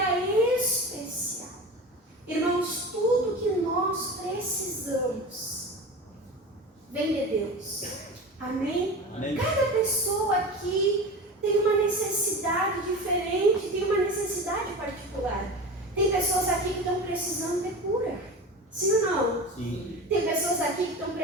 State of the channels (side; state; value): both; normal; correlation 0.31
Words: especial. Irmãos, tudo que nós precisamos vem de Deus. Amém? Amém. Cada pessoa aqui tem uma necessidade diferente, tem uma necessidade particular. Tem pessoas aqui que estão precisando de cura. Sim ou não? Sim. Tem pessoas aqui que estão